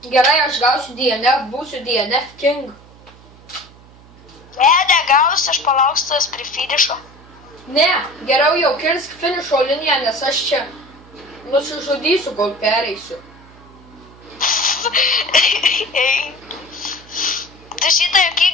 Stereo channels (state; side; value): noise; right; hum, 24 dB below the sound